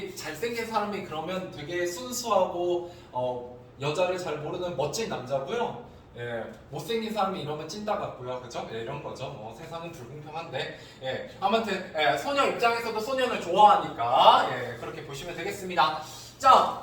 잘생긴 사람이 그러면 되게 순수하고 여자를 잘 모르는 멋진 남자고요. 못생긴 사람이 이러면 찐따 같고요. 그죠? 이런 거죠. 세상은 불공평한데. 아무튼 소녀 입장에서도 소년을 좋아하니까 그렇게 보시면 되겠습니다.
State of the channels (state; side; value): identical; both; correlation 1.00